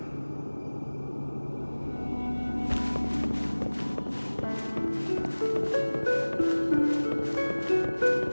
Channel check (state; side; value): inverted; both; correlation -1.00